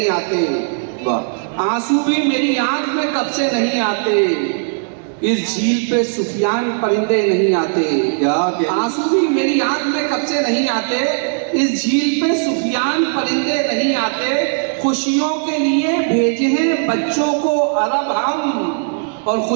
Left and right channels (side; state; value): left; silent; digital silence